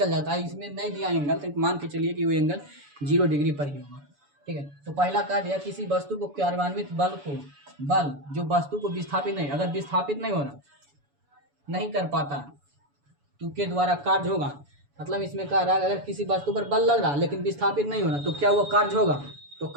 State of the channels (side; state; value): left; late; 7.0 ms